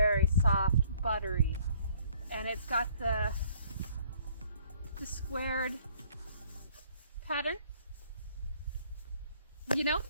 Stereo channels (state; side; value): inverted; both; correlation -0.60